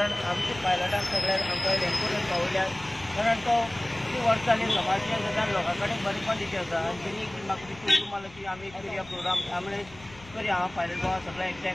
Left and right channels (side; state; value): left; noise; rumble, 21 dB below the sound